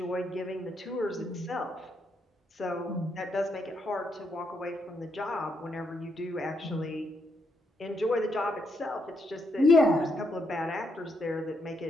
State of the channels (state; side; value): normal; both; correlation 0.78